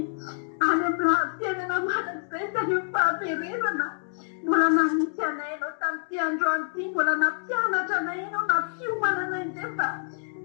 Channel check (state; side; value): silent; right; digital silence